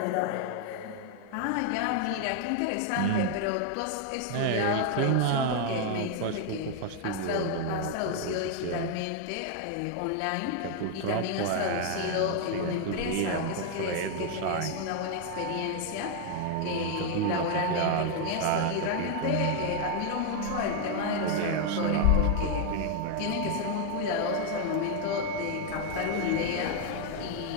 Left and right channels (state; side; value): different; both; correlation 0.00